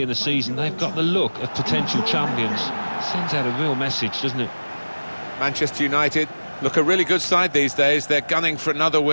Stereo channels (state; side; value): inverted; both; correlation -1.00